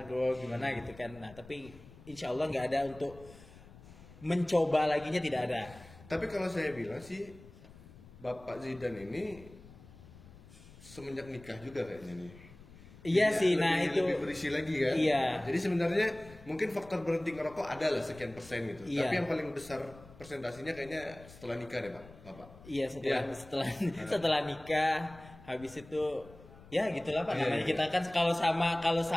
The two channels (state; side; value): noise; left; rumble, 20 dB below the sound